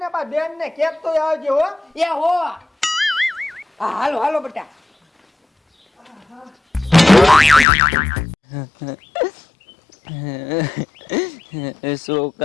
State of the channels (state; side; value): drops out; right; at 7.7 s